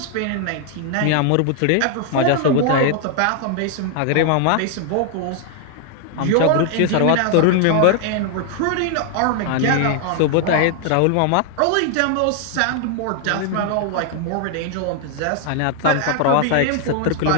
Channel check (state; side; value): different; both; correlation 0.00